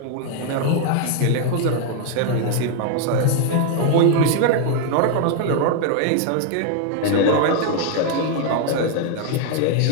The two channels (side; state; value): both; different; correlation 0.00